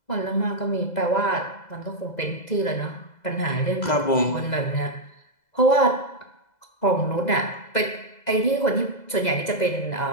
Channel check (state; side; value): late; right; 2.0 ms